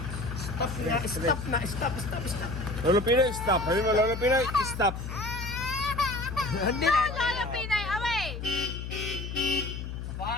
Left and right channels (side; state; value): left; noise; hum, 7 dB below the sound